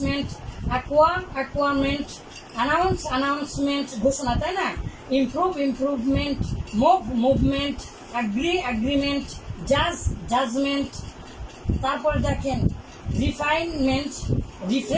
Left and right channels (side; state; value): both; identical; correlation 1.00